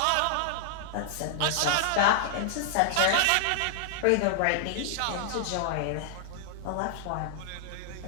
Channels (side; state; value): both; different; correlation -0.01